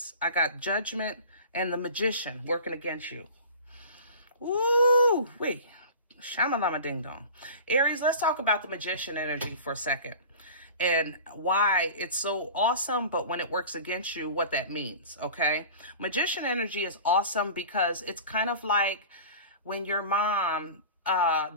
I got Judgment, and the Magician working against you. Ooh, wait. Shamalama ding dong. Aries, let's talk about the Magician energy for a second and why it's so awesome, but when it works against you, what that means, okay? Magician energy is awesome because it's kind of like when your mom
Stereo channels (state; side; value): inverted; both; correlation -0.38